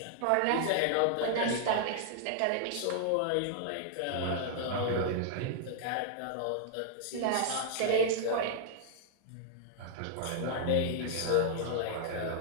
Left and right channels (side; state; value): both; different; correlation -0.01